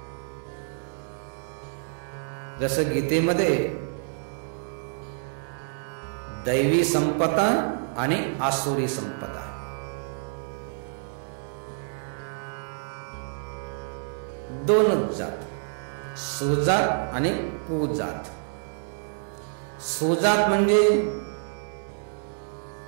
जसं गीतेमध्ये दैवी संपदा आणि आसुरी संपदा, दोनच जात, सुजात आणि कुजात. सुजात म्हणजे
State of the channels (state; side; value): silent; left; 60 dB below the other